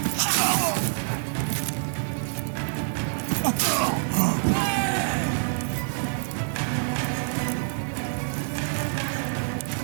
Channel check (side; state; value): left; silent; digital silence